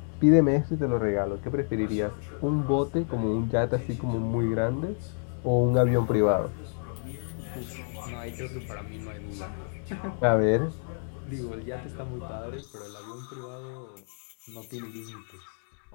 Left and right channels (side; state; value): right; silent; 59 dB below the other